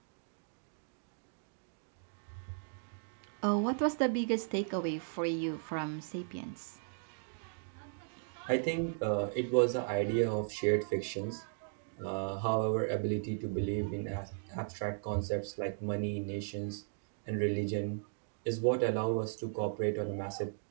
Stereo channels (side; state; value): left; silent; digital silence